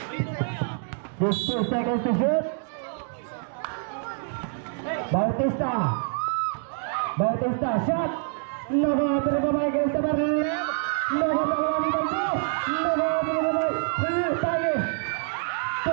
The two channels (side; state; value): left; silent; 61 dB below the other